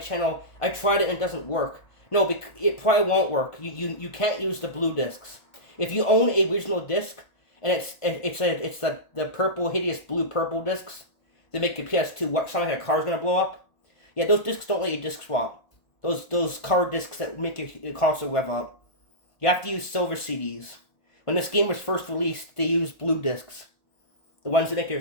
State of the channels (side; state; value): right; late; 1.5 ms